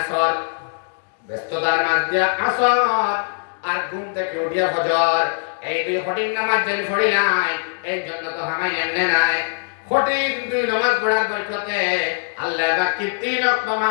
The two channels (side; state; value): right; silent; digital silence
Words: ব্যস্ততার মাঝ দিয়া আসর আর ঘুম থেকে উঠিয়া ফজর, এই দুই কঠিন নামাজ যেন পড়িলাই এই জন্য তো হামাই এমনি নাই। কঠিন দুই নামাজ পড়ার বরকতে আল্লাহ বাকি তিন